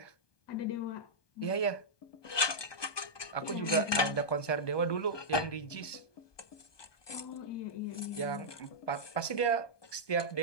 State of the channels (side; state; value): right; late; 1.2 ms